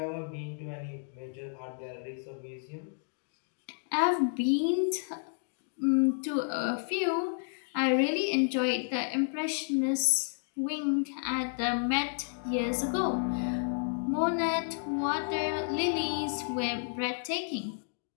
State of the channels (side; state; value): right; silent; digital silence